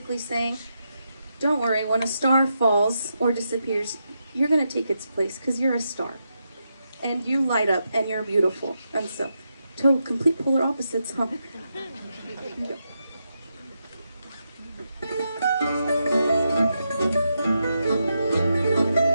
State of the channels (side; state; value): both; inverted; correlation -0.85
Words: saying, don't worry, when a star falls or disappears, you're going to take its place because you're a star. And you light up and you're beautiful. And so, total complete polar opposites, huh? Here you go.